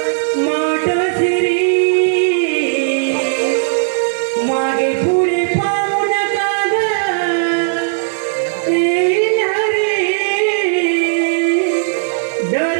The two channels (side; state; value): left; silent; 69 dB below the other